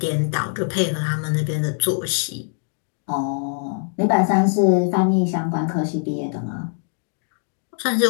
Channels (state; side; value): silent; right; digital silence